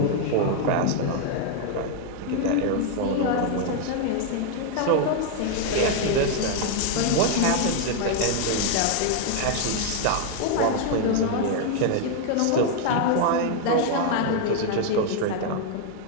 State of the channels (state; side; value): different; both; correlation 0.00